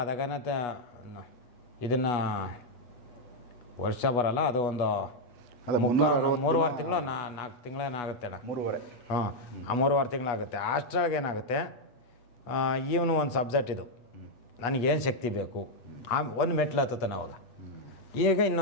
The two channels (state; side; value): late; right; 8.2 ms